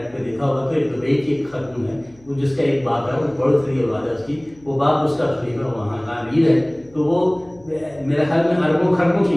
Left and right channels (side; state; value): left; noise; hum, 28 dB below the sound